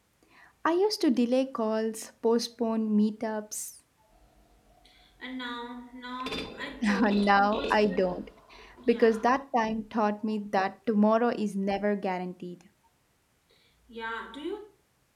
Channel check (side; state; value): both; identical; correlation 1.00